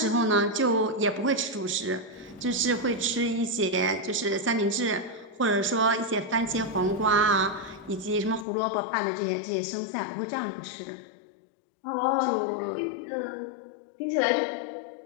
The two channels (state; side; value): drops out; right; at 8.5 s